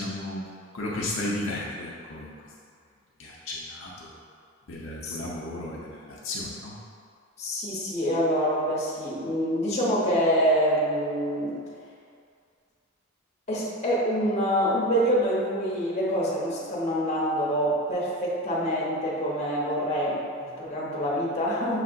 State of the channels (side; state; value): both; normal; correlation 0.24